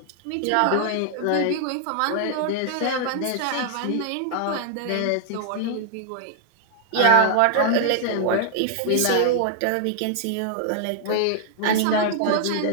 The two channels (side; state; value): both; different; correlation 0.00